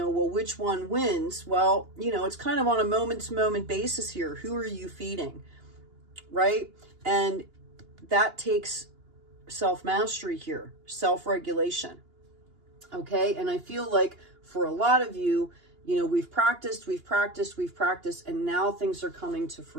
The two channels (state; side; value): late; left; 2.8 ms